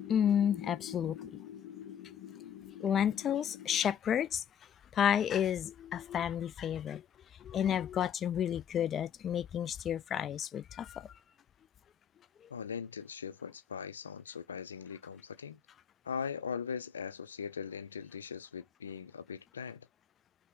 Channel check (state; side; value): quieter; right; 8.6 dB